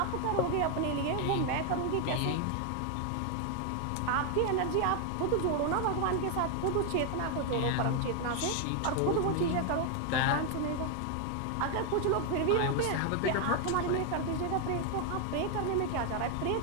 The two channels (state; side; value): different; both; correlation 0.01